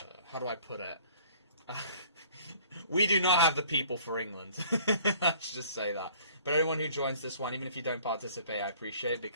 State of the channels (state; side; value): inverted; both; correlation -0.55